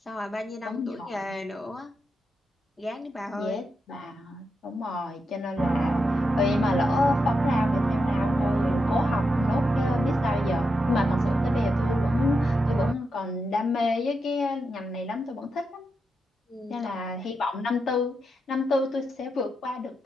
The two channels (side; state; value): both; normal; correlation 0.85